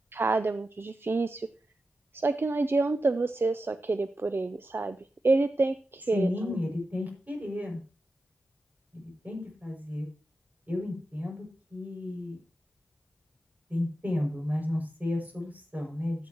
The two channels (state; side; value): normal; both; correlation 0.91